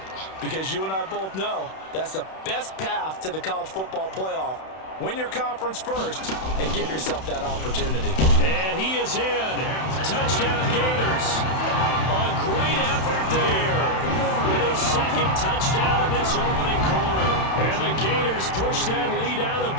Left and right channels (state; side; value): late; right; 31 ms